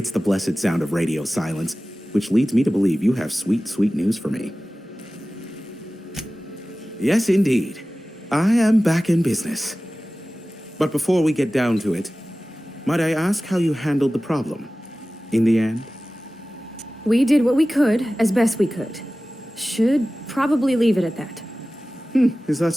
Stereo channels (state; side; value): normal; both; correlation 0.97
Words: the blessed sound of radio silence, which leads me to believe you have sweet, sweet news for me. Yes, indeed. I am back in business. But before we get down to it, might I ask how you handled the problem? In the end? We did what we could, as best we could. Should probably leave it at that. Is that